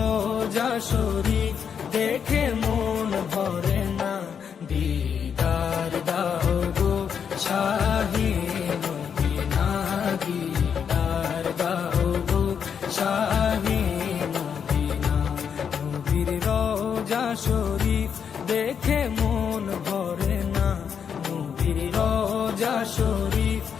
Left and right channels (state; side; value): quieter; right; 7.3 dB